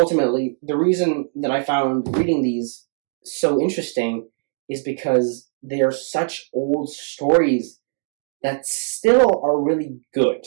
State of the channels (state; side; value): silent; left; 65 dB below the other